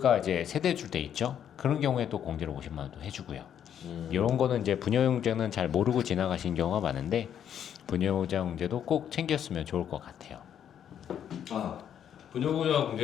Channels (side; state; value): right; quieter; 9.3 dB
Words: 이제 세대줄 때 있죠. 그런 경우에 또 공제를 50만 원도 해주고요. 이런 거는 이제 부녀용제는 잘 모르고 지나가신 경우가 많은데 부녀자 공제도 꼭 챙겼으면 좋을 것 같아요. 부녀부녀